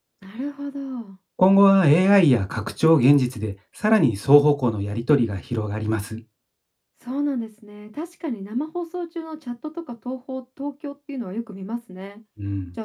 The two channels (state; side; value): identical; both; correlation 1.00